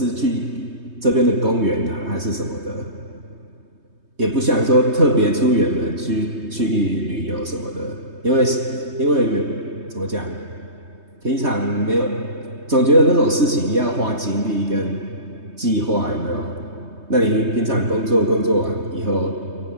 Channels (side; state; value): left; late; 3.2 ms